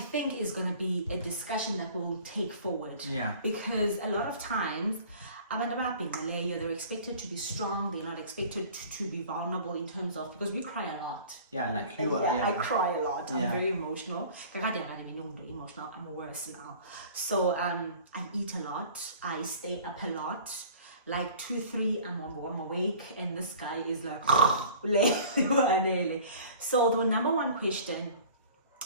is going to be a discussion that we'll take forward. Yeah. Because a lot of times, they're expected to be strong. They're not expected to be vulnerable in terms of, because we cry a lot. Yeah, like you are. I cry a lot. I'm Yeah. very emotional. I'm worse now. So I eat a lot. I stay up a lot. Like 2, 3, I'm awake, and this guy is like, so the number one question,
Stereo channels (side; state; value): both; inverted; correlation -0.46